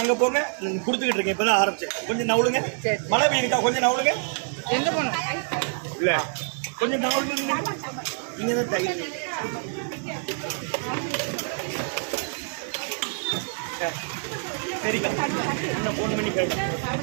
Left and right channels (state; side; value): silent; left; 61 dB below the other